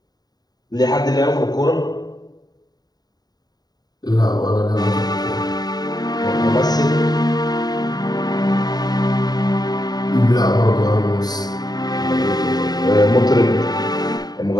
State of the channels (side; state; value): right; late; 0.19 ms